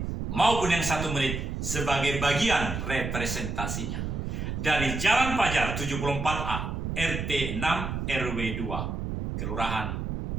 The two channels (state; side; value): noise; right; rumble, 4 dB below the sound